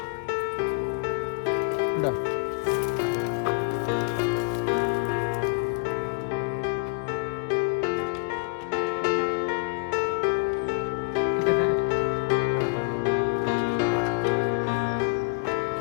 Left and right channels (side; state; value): right; quieter; 33.9 dB